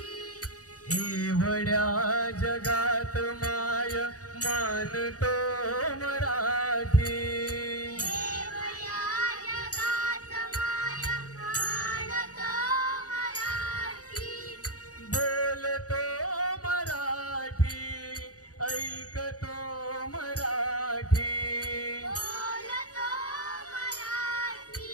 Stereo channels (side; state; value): right; late; 0.67 ms